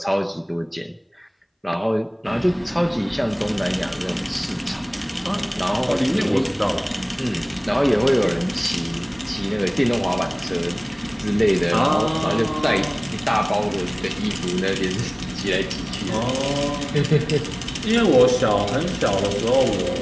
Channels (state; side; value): identical; both; correlation 1.00